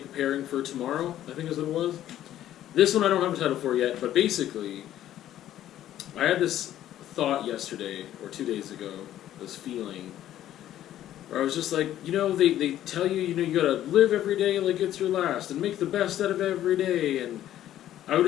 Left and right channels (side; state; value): right; quieter; 12.3 dB